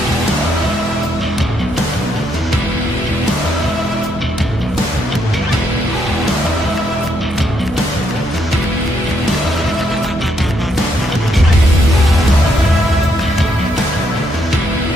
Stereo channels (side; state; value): right; noise; hum, 14 dB below the sound